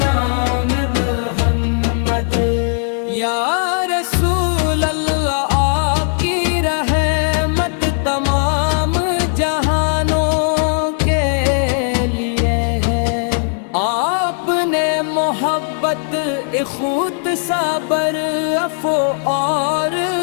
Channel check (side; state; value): right; silent; 68 dB below the other